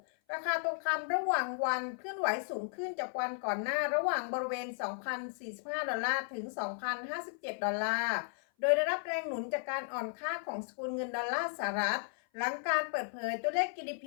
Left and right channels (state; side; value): silent; right; 55 dB below the other